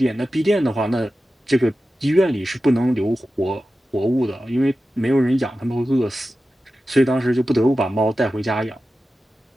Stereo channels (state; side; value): normal; both; correlation 0.93